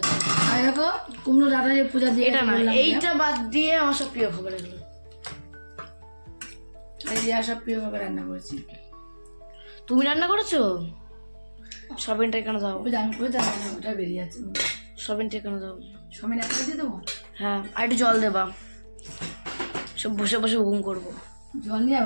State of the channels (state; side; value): inverted; both; correlation -1.00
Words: আর দেখো কুমড়ো ডাটা যে পূজা দিয়ে এটা না, বললাম, এইটা বাদ দিয়ে আমার সব প্রিয় খাবার এগুলো। এই রিয়া সব প্রিয় ভাবে রান্না করেছি। তুমি রান্না করেছো? সোয়াবিনটা এখানে দাও, ওই যে আমি করে রান্না ওটা বেরিয়ে আছে। সোয়াবিনটা এখানে দাও। সবাই একটা দিয়ে দেবো, হ্যাঁ, আর একটু জল দেবা, সব বসে বসে ঘুম করবো। জল নিয়ে